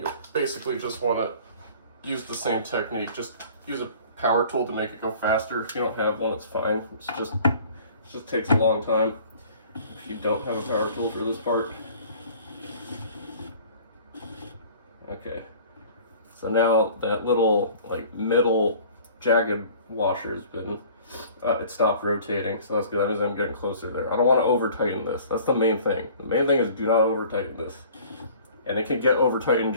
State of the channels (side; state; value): both; inverted; correlation -0.49